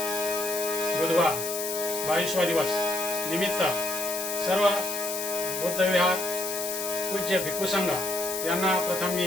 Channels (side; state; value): left; noise; hiss, 4 dB below the sound